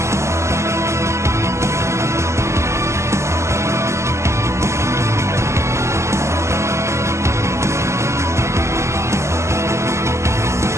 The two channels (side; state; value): left; late; 0.13 ms